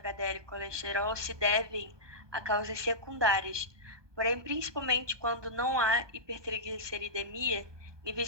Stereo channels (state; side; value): late; left; 1.2 ms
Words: e colesterol se devem a causas secundárias, porém, principalmente quando não há hipertrigliceridemia,